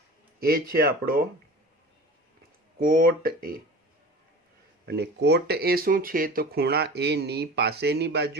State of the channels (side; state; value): both; normal; correlation 0.37